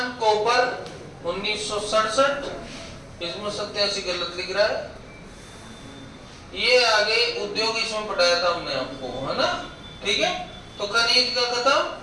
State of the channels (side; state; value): both; identical; correlation 1.00